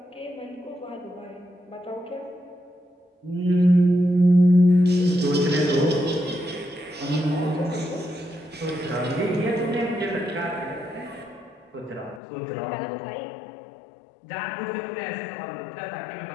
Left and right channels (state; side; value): drops out; right; at 12.2 s